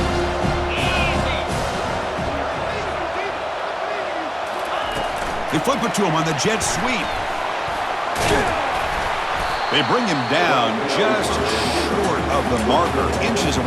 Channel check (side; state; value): both; identical; correlation 1.00